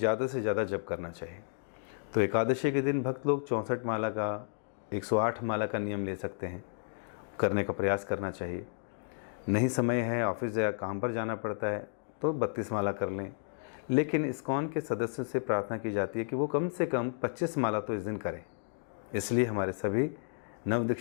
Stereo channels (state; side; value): silent; right; digital silence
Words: से ज़्यादा जप करना चाहिए। तो एकादशी के दिन भक्त लोग 64 माला का, 108 माला का नियम ले सकते हैं, करने का प्रयास करना चाहिए। नहीं समय है, ऑफिस या काम पर जाना पड़ता है, तो 32 माला कर लें। लेकिन इस्कॉन के सदस्यों से प्रार्थना की जाती है कि वो कम से कम 25 माला तो इस दिन करें। इसलिए हमारे सभी